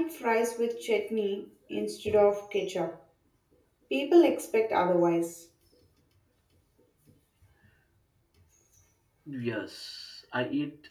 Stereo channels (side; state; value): both; identical; correlation 1.00